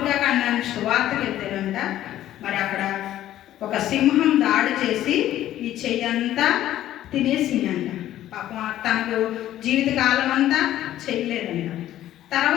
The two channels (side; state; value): right; quieter; 13.0 dB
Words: ఖండానికి సువార్తకి వెళ్తేనంట మరి అక్కడ ఒక సింహం దాడి చేసి ఈ చెయ్యంతా తినేసిందంట. పాపం తనకు జీవితకాలం అంతా చేయలేదంట.